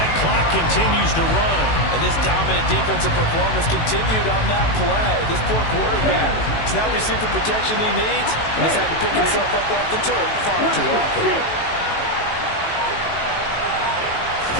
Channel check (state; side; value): late; right; 18 ms